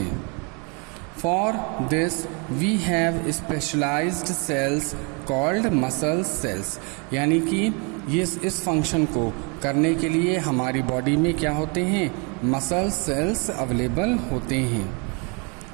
For this we have specialised cells called muscle cells. यानी कि ये इस फंक्शन को करने के लिए हमारी बॉडी में क्या होते हैं, मसल सेल्स अवेलेबल होते हैं.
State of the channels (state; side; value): quieter; left; 33.6 dB